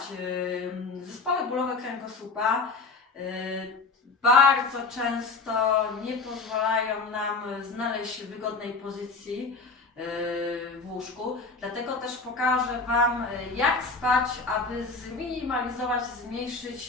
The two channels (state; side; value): quieter; right; 4.0 dB